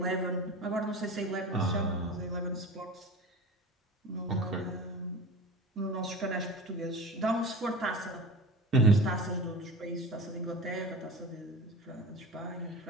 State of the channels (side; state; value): both; normal; correlation 0.34